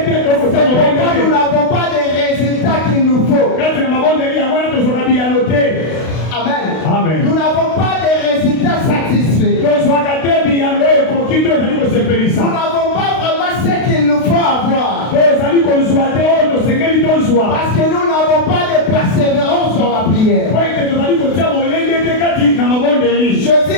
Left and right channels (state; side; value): late; right; 32 ms